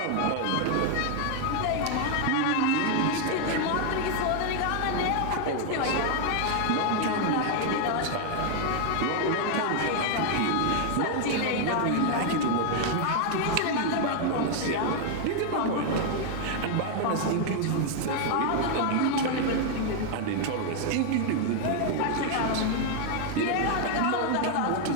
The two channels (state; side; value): different; both; correlation 0.00